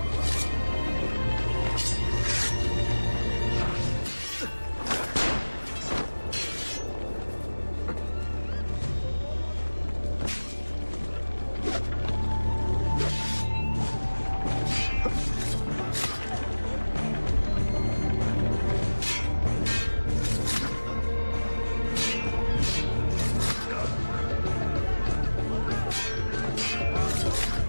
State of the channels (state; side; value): inverted; both; correlation -1.00